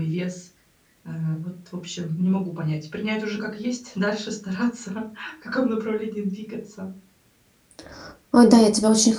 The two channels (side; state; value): both; identical; correlation 1.00